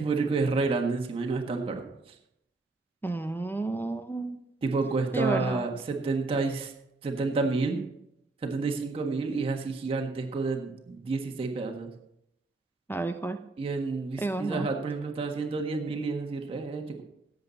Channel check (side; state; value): left; quieter; 3.3 dB